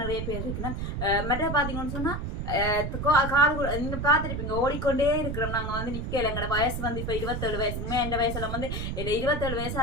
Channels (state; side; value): noise; right; rumble, 3 dB below the sound